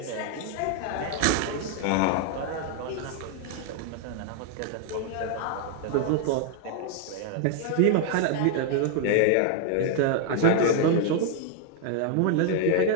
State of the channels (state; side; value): different; both; correlation 0.00